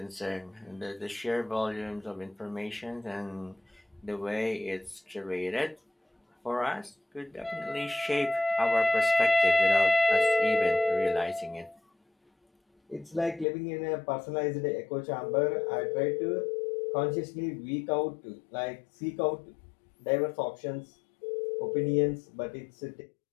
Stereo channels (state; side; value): drops out; right; at 13.5 s